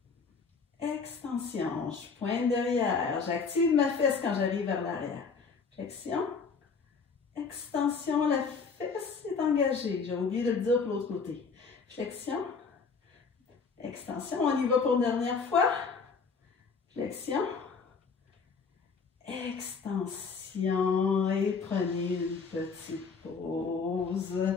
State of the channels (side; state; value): right; quieter; 5.2 dB